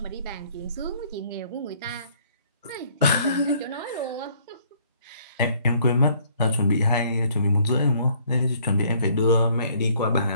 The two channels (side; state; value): both; inverted; correlation -0.61